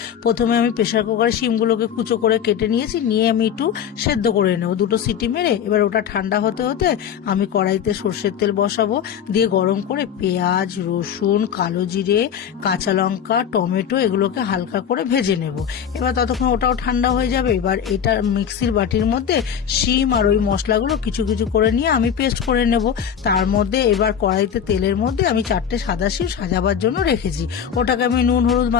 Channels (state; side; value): quieter; right; 8.3 dB